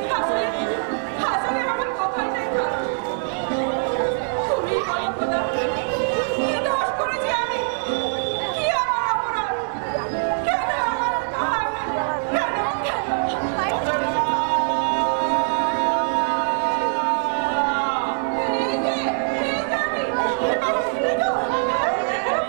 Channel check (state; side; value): silent; left; digital silence